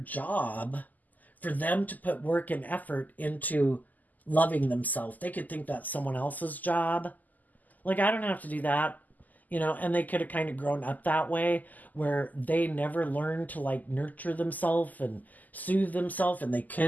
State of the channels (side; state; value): right; late; 0.082 ms